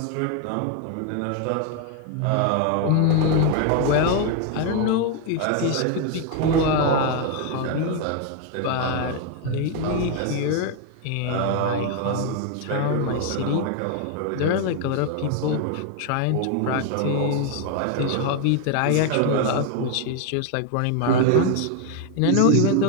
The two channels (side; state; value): both; different; correlation 0.01